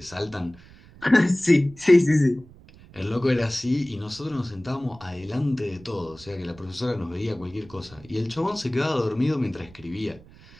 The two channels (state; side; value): noise; right; rumble, 23 dB below the sound